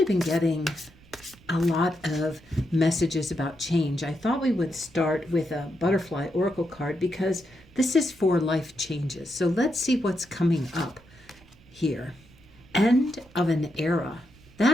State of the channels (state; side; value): noise; right; rumble, 26 dB below the sound